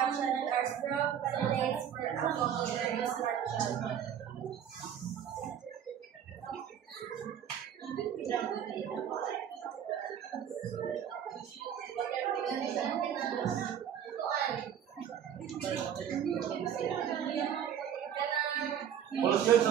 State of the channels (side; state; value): left; quieter; 9.1 dB